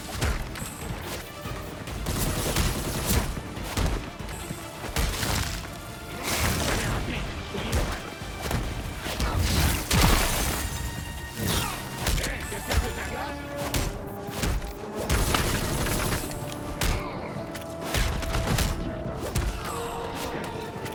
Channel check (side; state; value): both; identical; correlation 1.00